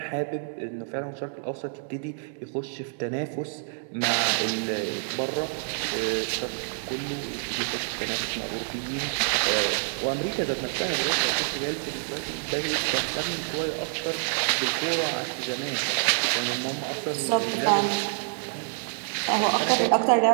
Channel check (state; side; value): silent; left; digital silence